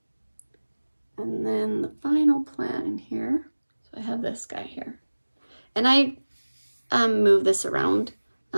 And then the final plant in here. So I have this guy here. And I move this around.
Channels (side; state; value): both; inverted; correlation -1.00